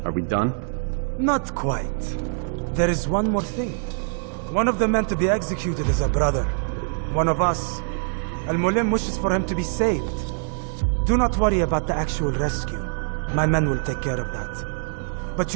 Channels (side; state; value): left; silent; 63 dB below the other